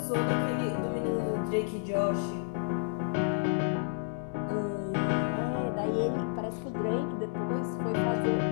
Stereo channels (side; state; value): right; silent; 57 dB below the other